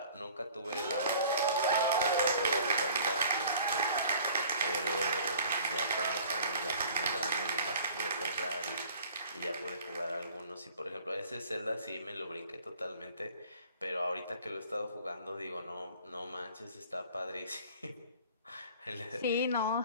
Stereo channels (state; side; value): inverted; both; correlation -0.49